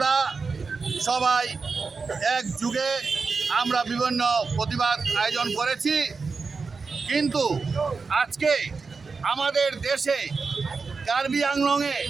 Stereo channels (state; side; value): quieter; left; 4.6 dB